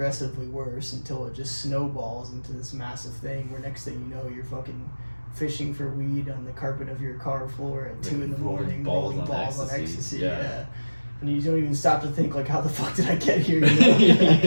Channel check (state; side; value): inverted; both; correlation -1.00